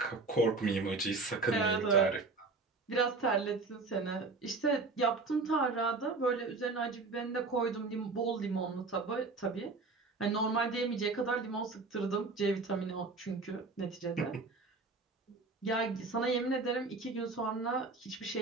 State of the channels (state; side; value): quieter; left; 3.8 dB